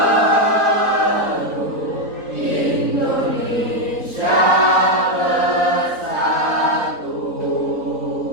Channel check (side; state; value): left; late; 3.9 ms